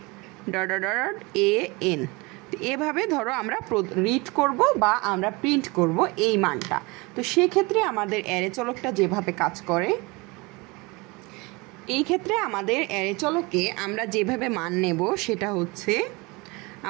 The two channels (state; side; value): quieter; left; 25.6 dB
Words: AN। তো এভাবে ধরো আমরা রিড করব বা আমরা প্রিন্ট করব এই মানটা। তো সেক্ষেত্রে আমাদের অ্যারে চলকটা যেভাবে কাজ করে, এই ক্ষেত্রে আমাদের অ্যারে চলকে আমরা যেভাবে মান নেব সেটা হচ্ছে,